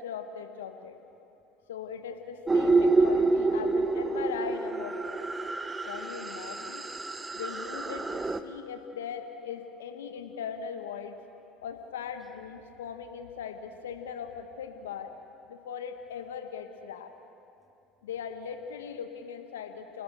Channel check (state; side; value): normal; both; correlation 0.71